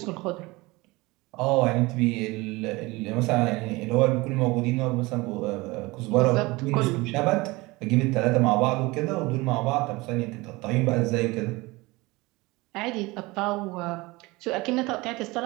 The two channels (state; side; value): quieter; left; 22.5 dB